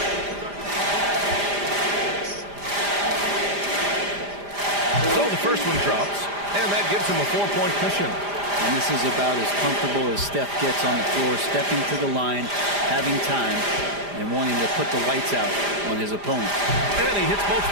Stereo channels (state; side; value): late; left; 5.0 ms